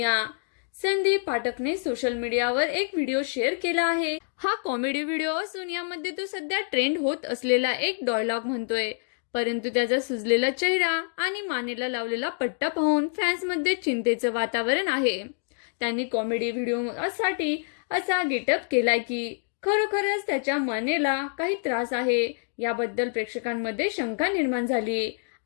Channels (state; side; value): silent; right; digital silence